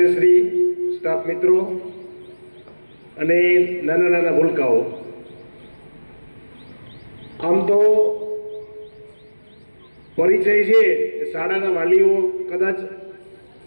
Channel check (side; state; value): both; inverted; correlation -1.00